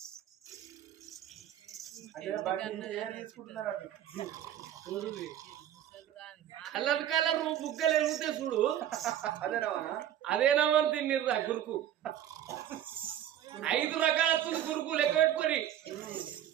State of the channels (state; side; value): quieter; left; 11.2 dB